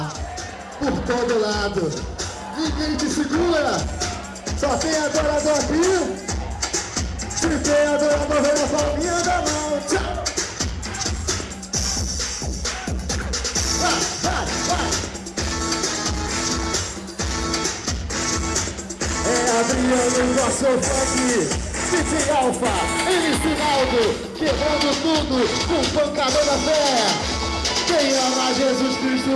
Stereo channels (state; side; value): identical; both; correlation 1.00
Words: por todo lado. Ninguém te segura. Só tem adorador aqui. Se tem adorador, vem na palminha da mão. Tchau. Vai. É Adriano, nosso funk. DJ Alfa, MC Naldo, quebrando tudo com pancada da fé. Quem ama Jesus Cristo